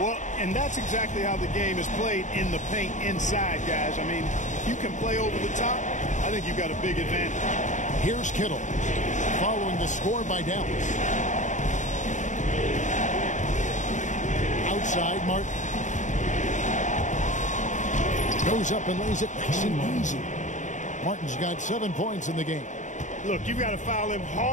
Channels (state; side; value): late; right; 0.36 ms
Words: and that's exactly how the game is played in the paint inside, guys. I mean, if you can play over the top, I think you've got a big advantage. Here's Kittle, following the score by Dallas. Outside, Martin. Goes up and lays it nice and easy. Martin's got 7 points in the game. Look, you've got to foul him